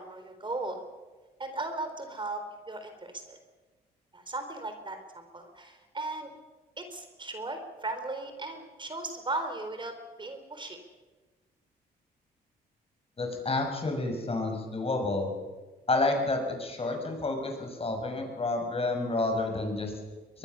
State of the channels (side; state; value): both; normal; correlation 0.41